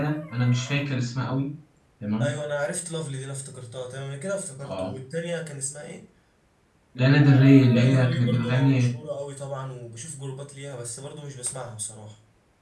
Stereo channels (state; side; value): identical; both; correlation 1.00